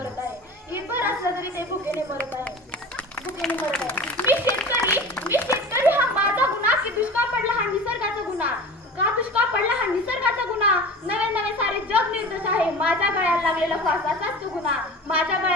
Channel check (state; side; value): normal; both; correlation 0.36